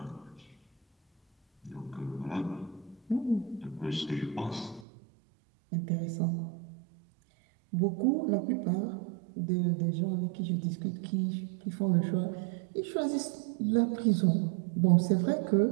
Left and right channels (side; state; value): left; drops out; at 4.9 s